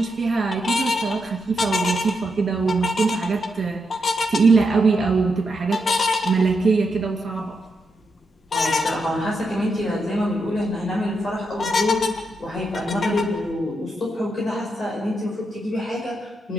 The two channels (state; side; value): normal; both; correlation 0.83